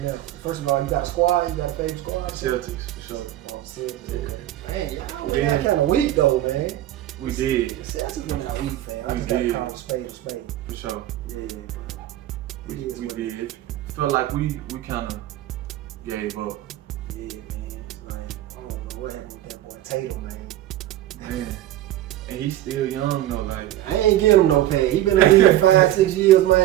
First of all, you got a squad? You got a favorite squad? Celtics, for sure. Celtics, okay. Man, y'all went Yeah. out kind of weak though, man. We did. Celtics went out weak, fam. I We just got to did. call a spade a spade. For sure. Yeah, bro. We It is what it did. Felt like we kind of gave up. Yeah, man. Like, I don't know what happened with that boy Tatum, man. Man. And he's still young though, like. I ain't give him no pay. He been in the league 5-6 years,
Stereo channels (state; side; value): quieter; left; 13.8 dB